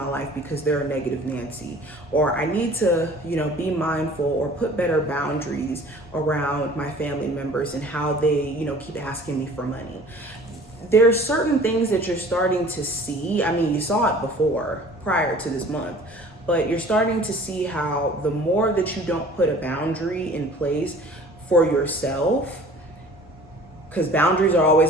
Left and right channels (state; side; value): normal; both; correlation 0.48